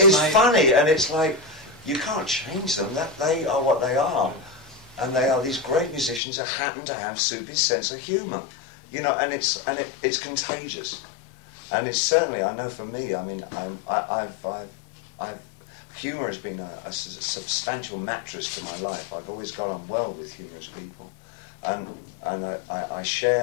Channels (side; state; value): right; drops out; at 6.2 s